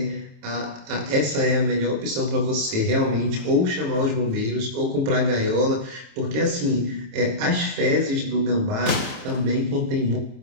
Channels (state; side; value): late; left; 29 ms